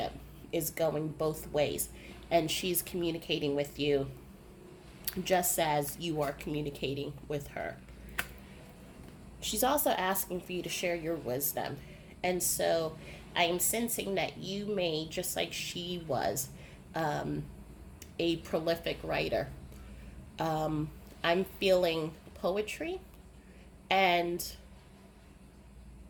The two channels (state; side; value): identical; both; correlation 1.00